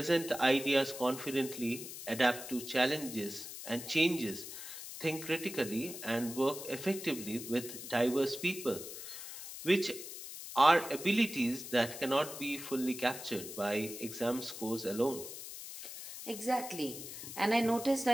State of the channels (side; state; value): left; noise; hiss, 10 dB below the sound